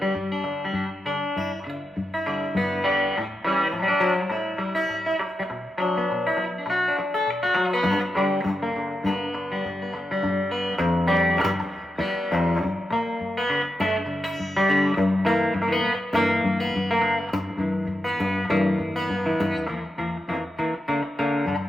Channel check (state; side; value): normal; both; correlation 0.89